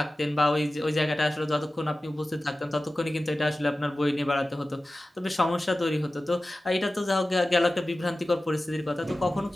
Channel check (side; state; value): both; normal; correlation 0.95